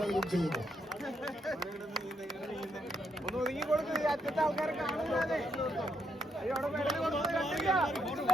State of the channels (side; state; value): both; normal; correlation 0.77